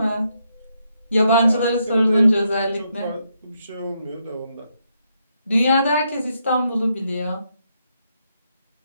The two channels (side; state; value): both; inverted; correlation -0.78